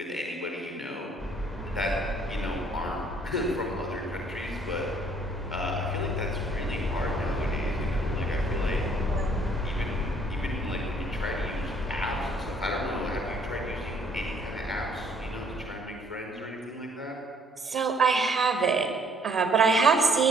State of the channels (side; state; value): both; normal; correlation 0.62